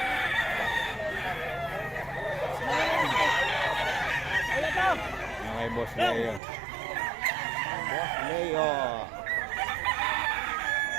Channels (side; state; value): left; drops out; at 6.4 s